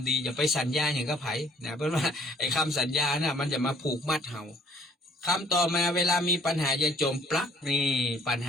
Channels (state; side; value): normal; both; correlation 0.59